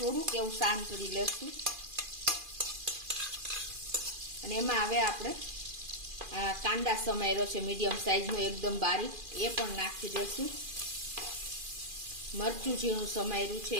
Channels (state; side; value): late; left; 2.4 ms